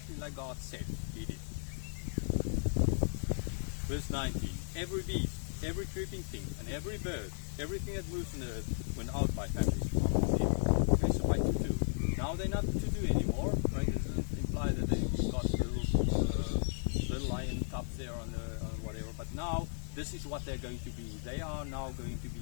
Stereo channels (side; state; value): right; silent; digital silence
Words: like God said, he did. Verse 19. Every beast, every creeping thing, and every bird, everything that moves on the earth, went out by families. Okay, so by two. Now they're not two anymore, right? It doesn't imply that they've got little lion cubs there on whatever, but now this is what they're going to be. They are now going to